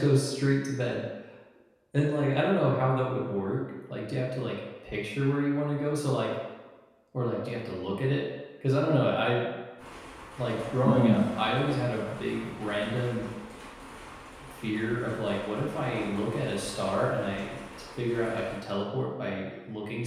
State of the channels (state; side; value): identical; both; correlation 1.00